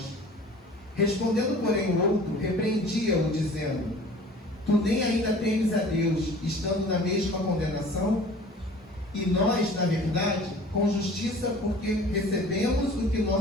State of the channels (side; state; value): both; normal; correlation 0.46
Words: Respondendo, porém, o outro, repreendia-o, dizendo: tu nem ainda temes a Deus, estando na mesma condenação? E nós, na verdade, com justiça, porque recebemos o que